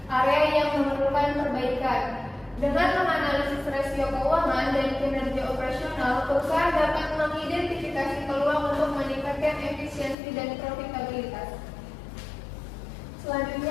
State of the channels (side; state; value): right; drops out; at 10.2 s